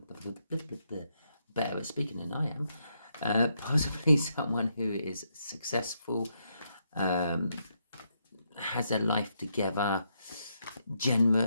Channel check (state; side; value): inverted; both; correlation -0.79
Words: better at speaking than I am. Possibly someone who is successful, has their life together,